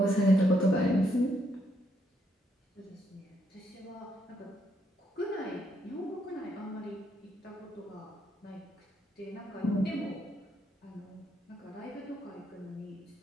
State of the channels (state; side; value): normal; both; correlation 0.74